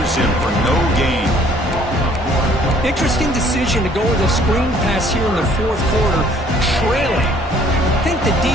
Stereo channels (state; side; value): normal; both; correlation 0.59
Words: him for no gain. Interesting decision to go with a screen pass here in the fourth quarter, trailing. I think the